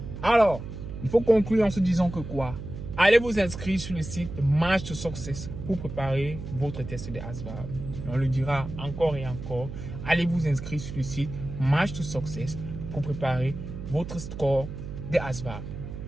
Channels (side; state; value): right; noise; hum, 9 dB below the sound